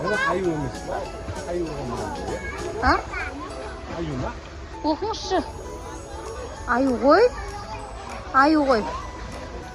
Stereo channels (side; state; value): both; identical; correlation 1.00